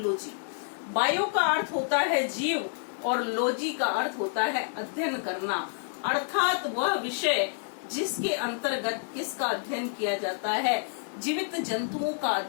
बायो का अर्थ होता है जीव और लॉजी का अर्थ होता है अध्ययन करना, अर्थात वह विषय जिसके अंतर्गत किसका अध्ययन किया जाता है, जीवित जंतुओं का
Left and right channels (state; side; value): silent; right; 59 dB below the other